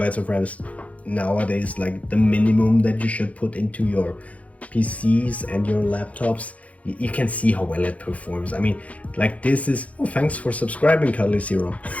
of RAM is nowadays like the minimum that you should put into your PCs and your laptops. You can see how well it performs. I mean, like this is, oh, thanks for subscribing, Cuddly Zero.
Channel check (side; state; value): right; late; 0.067 ms